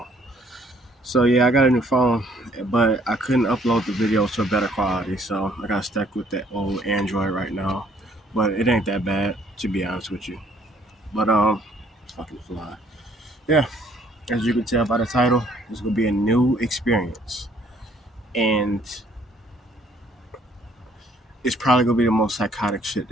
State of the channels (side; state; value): both; normal; correlation 0.62